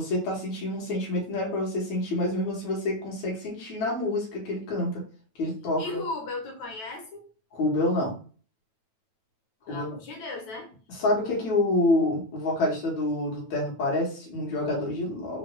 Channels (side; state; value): right; late; 9.1 ms